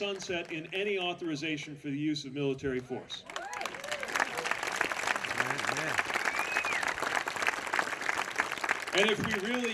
in any authorization for the use of military force. And if we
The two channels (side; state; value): both; identical; correlation 1.00